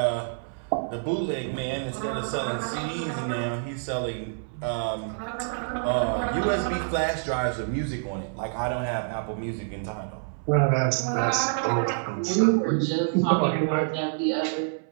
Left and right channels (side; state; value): left; silent; 60 dB below the other